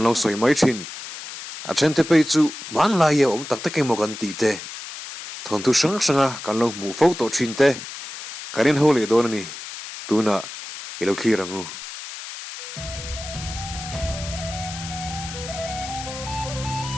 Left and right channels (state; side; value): noise; left; hiss, 11 dB below the sound